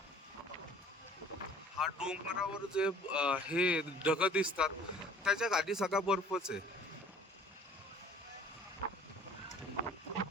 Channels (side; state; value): both; normal; correlation 0.50